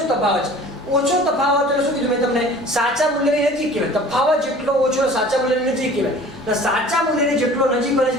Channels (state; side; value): normal; both; correlation 0.46